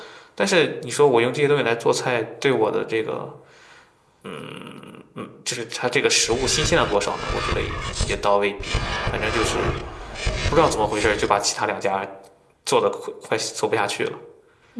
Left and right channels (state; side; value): identical; both; correlation 1.00